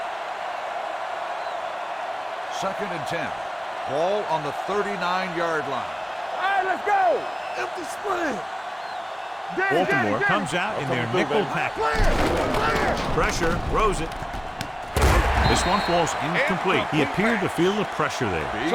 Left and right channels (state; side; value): identical; both; correlation 1.00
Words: Second and 10. Ball on the 39-yard line. All right, let's go. Empty split. Baltimore comes out in their nickel package. Pressure, throws it. This one falls incomplete. He appeared to feel the pressure there.